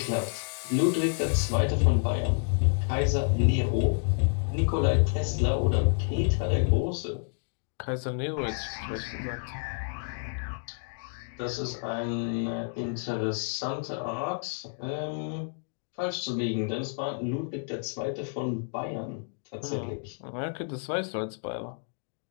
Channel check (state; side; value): silent; right; digital silence